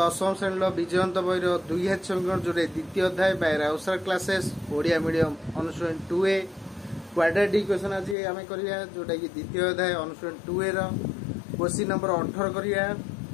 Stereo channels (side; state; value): right; drops out; at 8.2 s